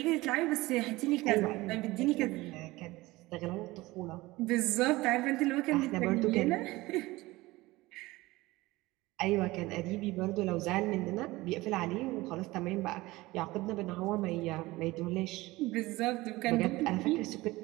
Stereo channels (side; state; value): left; quieter; 19.9 dB